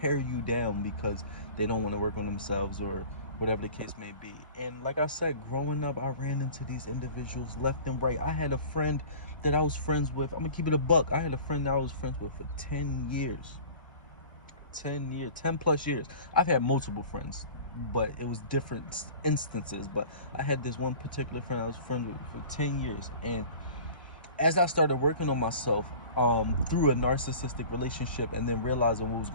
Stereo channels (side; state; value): both; inverted; correlation -0.43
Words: you down because they don't want to work on themselves, or whatever the case may be. And like I said, growing up, I ran into these individuals left and right. I had a friend that I was friends with. I'm gonna keep it a buck. I had a friend that I was friends with for 10 years. 10 plus years. I've had multiple friends, but it was different instances. But I had this one particular friend I was friends with for 10 years. And as I started working on myself through a narcissistic relationship and then realizing what was